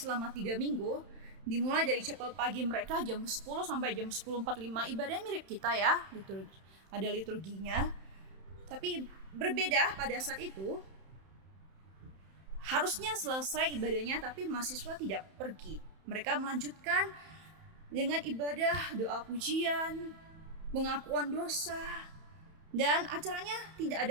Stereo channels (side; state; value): left; late; 31 ms